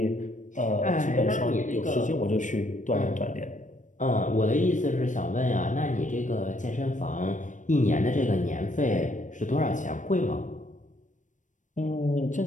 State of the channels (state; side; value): late; right; 0.37 ms